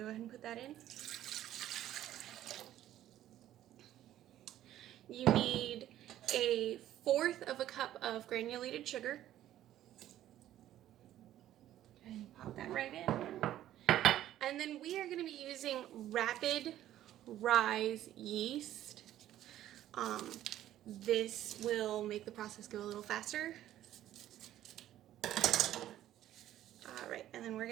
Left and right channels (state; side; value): quieter; left; 12.8 dB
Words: go ahead and put that in. You need a 1/4 of a cup of granulated sugar. And pop that right in. And then we are going to be using rapid rise yeast. This will make the process go a little faster. Alright, and then we're